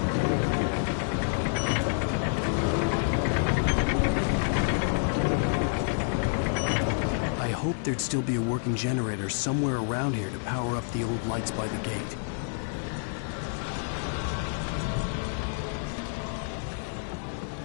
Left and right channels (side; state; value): right; silent; digital silence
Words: There'd still be a working generator somewhere around here to power up the old lights by the gate.